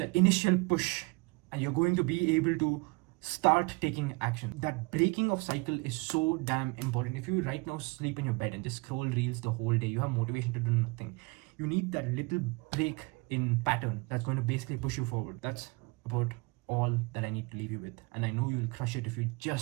initial push, and you're going to be able to start taking action. That breaking of cycle is so damn important. If you right now sleep in your bed and just scroll reels the whole day, you have motivation to do nothing. You need that little break in pattern that's going to basically push you forward. That's about all that I need to leave you with, and I know you'll crush it if you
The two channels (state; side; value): quieter; left; 27.3 dB